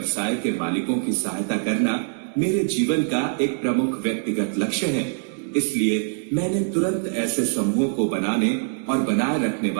के मालिकों की सहायता करना मेरे जीवन का एक प्रमुख व्यक्तिगत लक्ष्य है, इसलिए मैंने तुरंत ऐसे समूहों को बनाने और बनाए रखने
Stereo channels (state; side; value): silent; left; digital silence